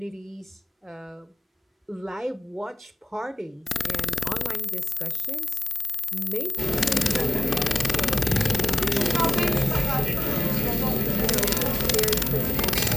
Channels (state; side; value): normal; both; correlation 0.97